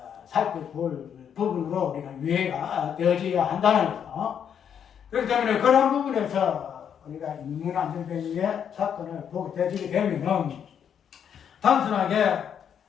살펴볼 부분으로 우리가 이해가 되어져야 한다는 거죠. 그렇기 때문에 그런 부분에서 우리가 인문 안전병의 사건을 보게 되게 되면은 단순하게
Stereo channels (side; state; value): right; quieter; 8.3 dB